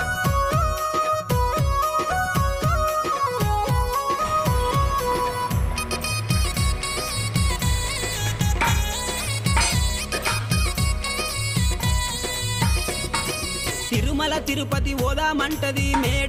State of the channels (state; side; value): identical; both; correlation 1.00